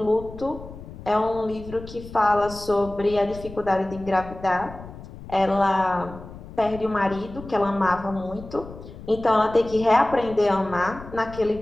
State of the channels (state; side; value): noise; left; rumble, 15 dB below the sound